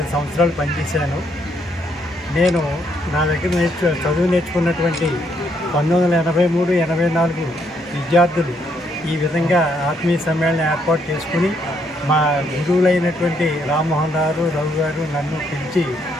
సంవత్సరాలు పనిచేశాను. నేను నా దగ్గర చదువు నేర్చుకున్నటువంటి 1983-84 విద్యార్థులు ఈ విధంగా ఆత్మీయ సమ్మేళనం ఏర్పాటు చేసుకుని మా గురువులైనటువంటి రామ్మోహన్ రావు రవి గారు నన్ను పిలిచి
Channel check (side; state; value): both; normal; correlation 0.73